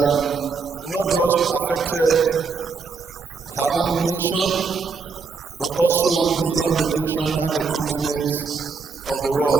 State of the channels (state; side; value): quieter; left; 4.9 dB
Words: not just affected her own nation, but also beyond the nation and the continents of the